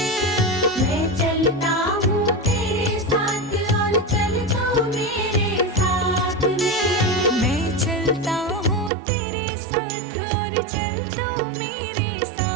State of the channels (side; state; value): left; drops out; at 8.9 s